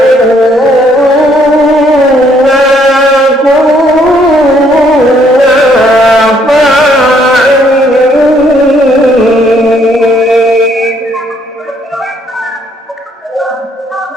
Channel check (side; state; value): both; normal; correlation 0.67